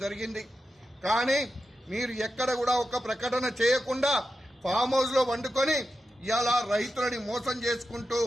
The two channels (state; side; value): normal; both; correlation 0.89